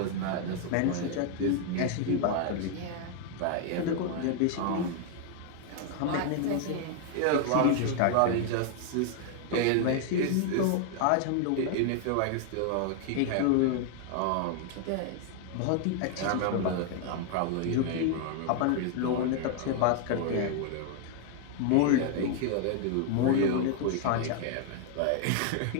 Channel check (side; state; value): both; different; correlation 0.00